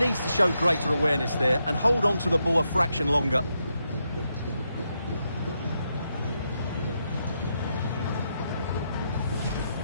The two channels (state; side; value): inverted; both; correlation -0.82